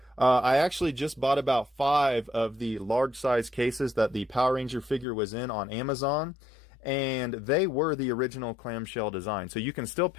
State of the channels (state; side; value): drops out; right; at 5.1 s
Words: I actually just bought about 5 of the large size cases that the Power Ranger figure was in on Amazon, and they were the original clamshell design. So you can still